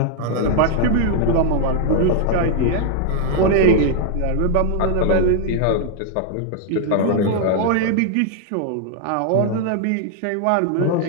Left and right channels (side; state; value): both; different; correlation 0.00